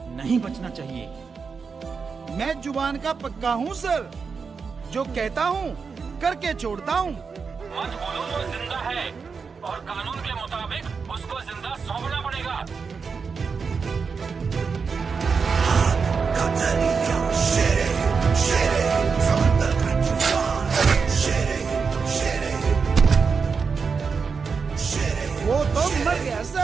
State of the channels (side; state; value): left; quieter; 5.4 dB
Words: नहीं बचना चाहिए। मैं जुबान का पक्का हूँ सर। जो कहता हूँ करके छोड़ता हूँ। मत बोलो वो जिंदा है और कानून के मुताबिक उसको जिंदा सौंपना पड़ेगा। वो तो मर गया